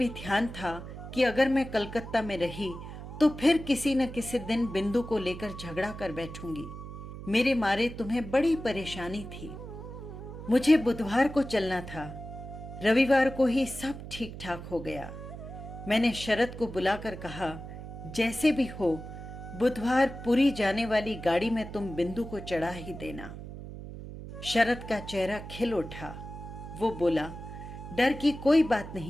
ध्यान था कि अगर मैं कलकत्ता में रही तो फिर किसी न किसी दिन बिंदु को लेकर झगड़ा कर बैठूंगी। मेरे मारे तुम्हें बड़ी परेशानी थी। मुझे बुधवार को चलना था, रविवार को ही सब ठीक ठाक हो गया। मैंने शरद को बुलाकर कहा, जैसे भी हो बुधवार पुरी जाने वाली गाड़ी में तुम बिंदु को चढ़ा ही देना। शरद का चेहरा खिल उठा। वो बोला, डर की कोई बात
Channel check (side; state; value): right; noise; hum, 11 dB below the sound